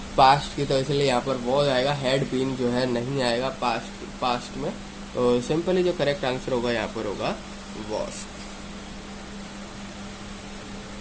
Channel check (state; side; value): identical; both; correlation 1.00